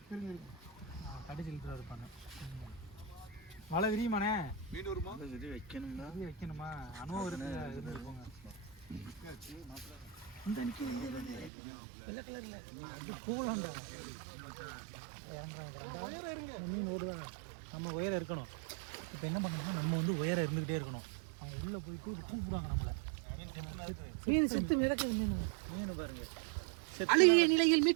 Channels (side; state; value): left; drops out; at 11.5 s